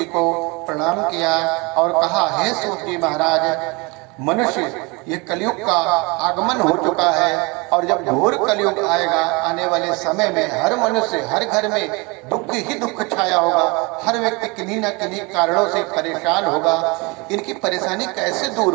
को प्रणाम किया और कहा, हे सूत जी महाराज, मनुष्य ये कलयुग का आगमन हो चुका है और जब घोर कलयुग आएगा, आने वाले समय में हर मनुष्य, हर घर में दुख ही दुख छाया होगा। हर व्यक्ति किन्हीं न किन्हीं कारणों से परेशान होगा। इनकी परेशानी कैसे दूर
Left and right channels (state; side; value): quieter; left; 27.4 dB